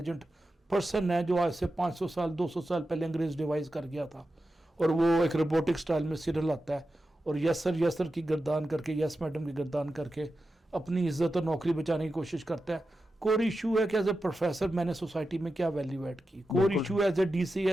پرسن ہے جو آج سے 500 سال 200 سال پہلے انگریز ڈیوائز کر گیا تھا, اور وہ ایک روبوٹک سٹائل میں سیریل آتا ہے اور یس سر کی گردان کر کے, یس میڈم کی گردان کر کے اپنی عزت اور نوکری بچانے کی کوشش کرتا ہے. کور ایشو ہے کہ ایز اے پروفیسر میں نے سوسائٹی میں کیا ویلیو ایڈ کی. کور ایشو ہے as a D C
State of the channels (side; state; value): both; normal; correlation 0.91